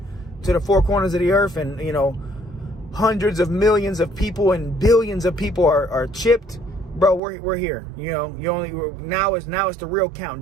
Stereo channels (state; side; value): drops out; left; at 7.2 s